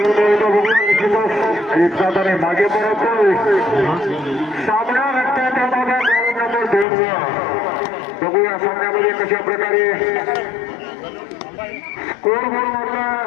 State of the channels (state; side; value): drops out; right; at 6.9 s